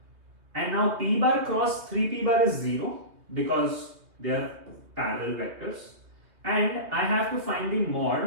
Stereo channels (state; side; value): late; left; 2.6 ms